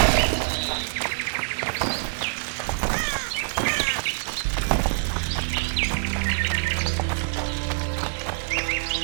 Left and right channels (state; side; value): silent; left; 62 dB below the other